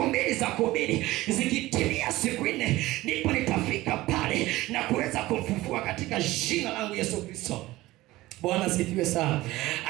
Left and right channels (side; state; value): left; quieter; 18.0 dB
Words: za kuhubiri. Zikitimia siku 4 ndipo nitafika pale na kuweza kumfufua katika jina langu Yesu Kristo. Bwana sifiwe sana.